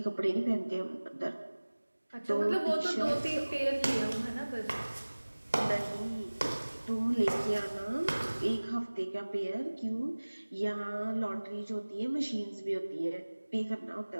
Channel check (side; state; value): both; inverted; correlation -1.00